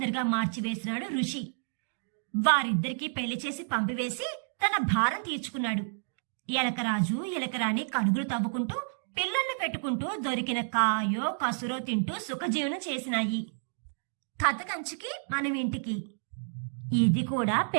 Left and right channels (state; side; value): silent; left; digital silence